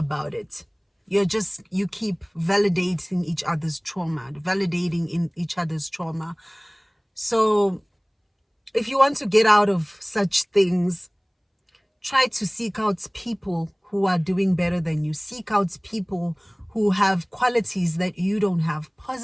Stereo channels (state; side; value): identical; both; correlation 1.00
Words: it. You keep validating each other's trauma, validating in each other's trauma. So if you want to get out of such things, try to seek out people who are doing better than you. Seek out people who have qualities that you don't have,